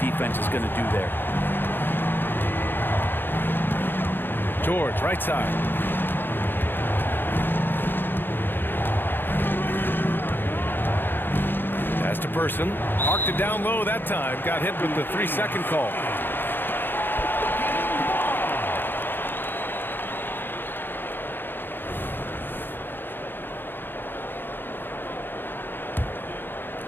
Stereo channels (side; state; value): right; late; 0.098 ms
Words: defense is going to do there. George, right side. Pass to Person. Parked it down low that time. Got hit with the 3-second call.